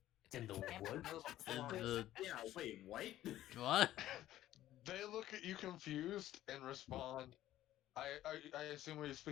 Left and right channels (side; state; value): right; quieter; 13.7 dB